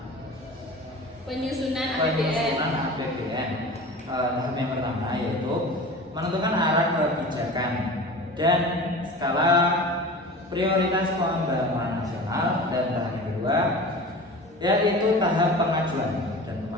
Penyusunan APBN. penyusunan APBN. Tahap yang pertama yaitu menentukan arah kebijakan dan skala prioritas pembangunan nasional, dan tahap yang kedua yaitu tahap pengajuan dan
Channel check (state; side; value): normal; both; correlation 0.36